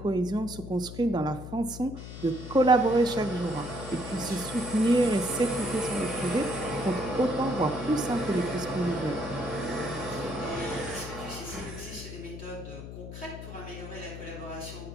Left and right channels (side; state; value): left; noise; hum, 11 dB below the sound